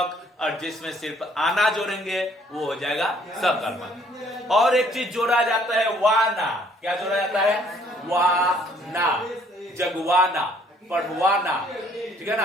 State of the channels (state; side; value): normal; both; correlation 0.62